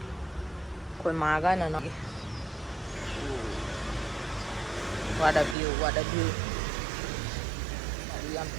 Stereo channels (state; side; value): drops out; left; at 5.6 s